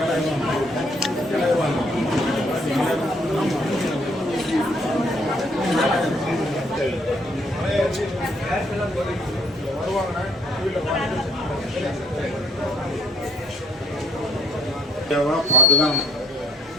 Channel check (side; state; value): both; normal; correlation 0.64